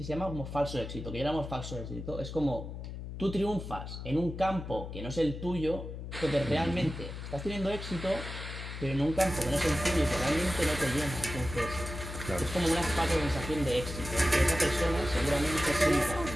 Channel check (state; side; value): noise; left; hum, 8 dB below the sound